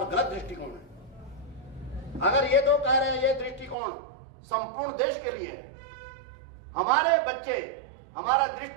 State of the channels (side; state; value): left; drops out; at 3.8 s